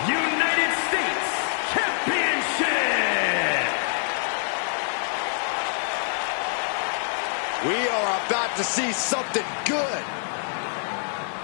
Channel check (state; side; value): silent; right; 61 dB below the other